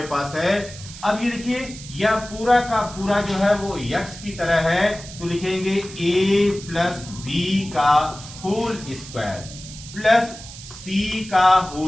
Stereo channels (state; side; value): noise; right; hiss, 15 dB below the sound